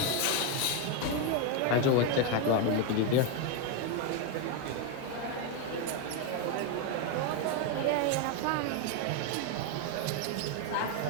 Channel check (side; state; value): both; different; correlation 0.02